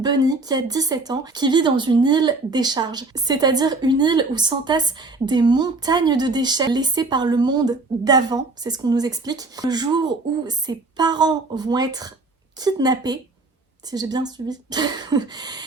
qui a 17 ans, qui vit dans une île décharge. C'est-à-dire une île où s'entassent des montagnes de déchets laissés par le monde d'avant, c'est ce qu'on nous explique. Le jour où ses parents vont être kidnappés, si j'ai bien suivi,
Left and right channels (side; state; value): left; quieter; 3.4 dB